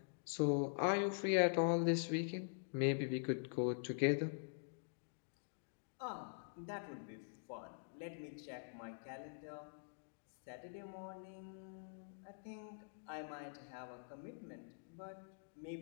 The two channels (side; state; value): right; silent; digital silence